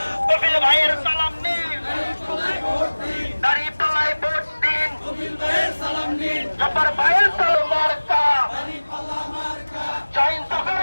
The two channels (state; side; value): inverted; both; correlation -1.00